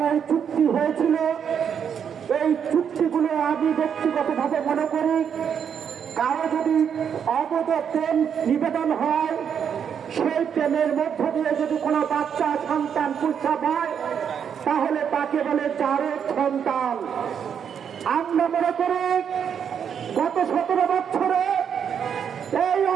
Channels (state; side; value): quieter; left; 7.8 dB